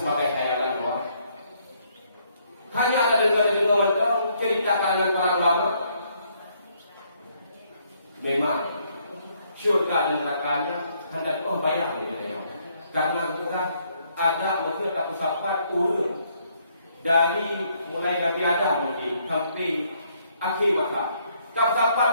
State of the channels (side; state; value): both; inverted; correlation -0.70